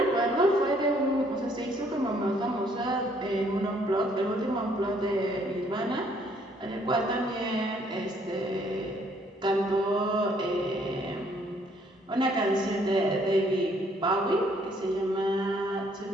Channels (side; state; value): both; normal; correlation 0.65